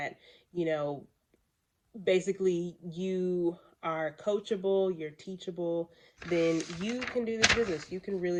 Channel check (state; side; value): identical; both; correlation 1.00